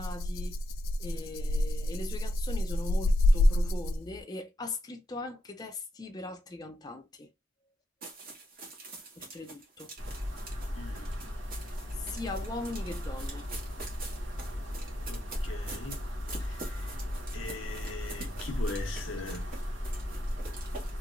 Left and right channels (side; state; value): both; normal; correlation 0.83